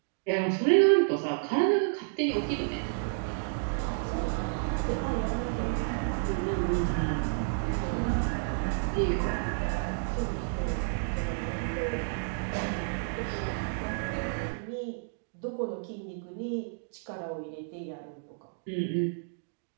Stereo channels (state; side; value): silent; left; digital silence